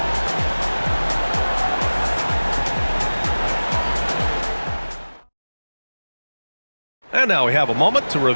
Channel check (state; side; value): inverted; both; correlation -1.00